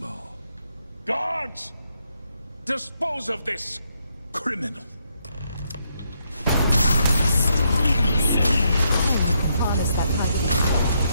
Guards! Dispose of this criminal! Honest, that kind of...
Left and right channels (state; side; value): inverted; both; correlation -0.77